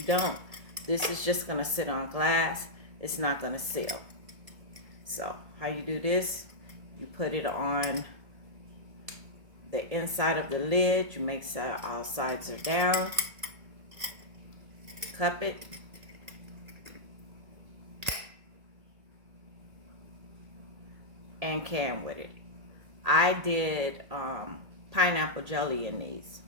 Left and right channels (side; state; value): left; late; 1.7 ms